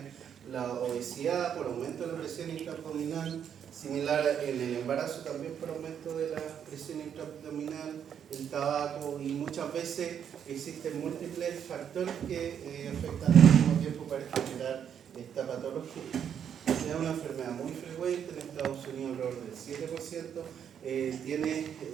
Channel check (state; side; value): quieter; left; 8.5 dB